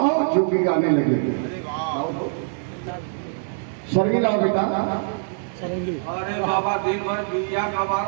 जोगी गाने लगे। सरगी लाओ बेटा। अरे बाबा दिन भर बिया का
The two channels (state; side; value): silent; left; digital silence